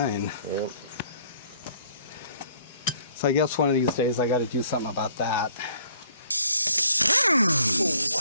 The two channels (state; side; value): inverted; both; correlation -0.60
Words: Yep. So I guess one of these days I got to do something about that.